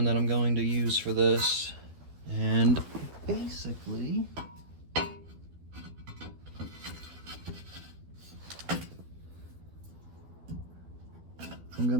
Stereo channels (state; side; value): late; left; 12 ms